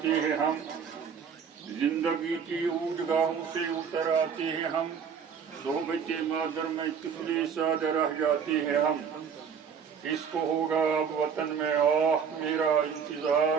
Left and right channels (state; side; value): quieter; left; 6.9 dB